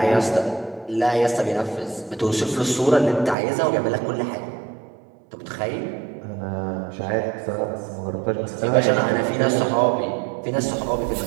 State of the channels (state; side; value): drops out; left; at 3.4 s